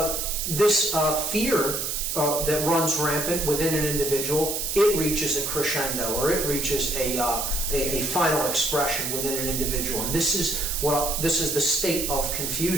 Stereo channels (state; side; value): noise; right; hiss, 2 dB below the sound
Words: This fear that runs rampant within an individual, it reaches a crescendo, or it reaches a final expression within an individual, and this is the state of